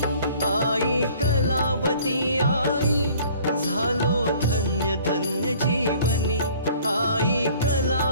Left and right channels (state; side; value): inverted; both; correlation -0.53